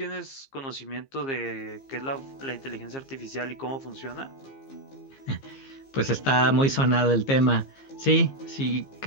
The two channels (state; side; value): late; right; 15 ms